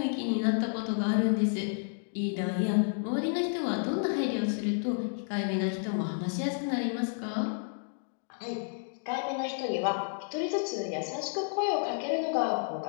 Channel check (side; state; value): right; silent; digital silence